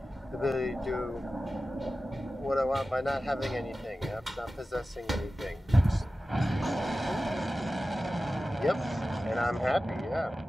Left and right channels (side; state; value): both; normal; correlation 0.95